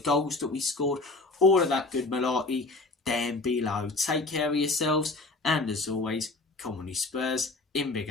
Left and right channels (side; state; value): right; quieter; 3.3 dB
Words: that we scored? All of that good malarkey down below. Take care of yourselves. And as always, come on you Spurs. In Big